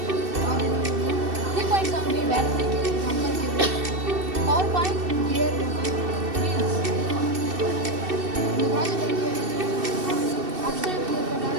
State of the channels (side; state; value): left; late; 2.7 ms